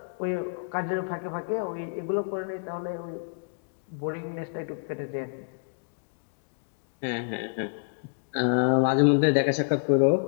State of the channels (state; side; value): silent; right; digital silence